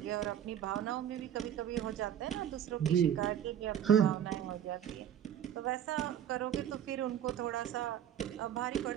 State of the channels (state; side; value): quieter; left; 9.8 dB